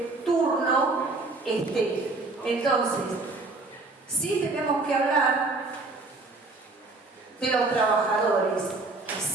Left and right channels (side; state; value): left; quieter; 3.4 dB